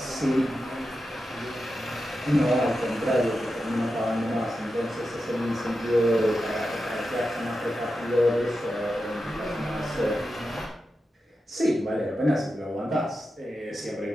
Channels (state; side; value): normal; both; correlation 0.90